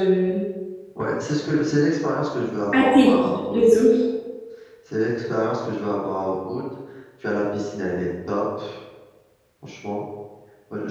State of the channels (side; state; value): both; identical; correlation 1.00